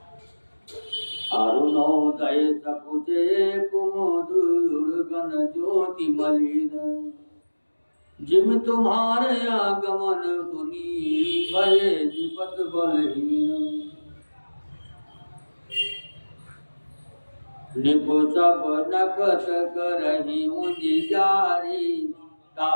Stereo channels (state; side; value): inverted; both; correlation -1.00